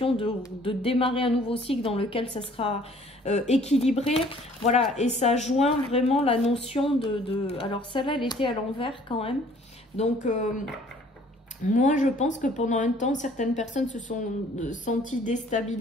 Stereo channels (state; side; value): normal; both; correlation 0.56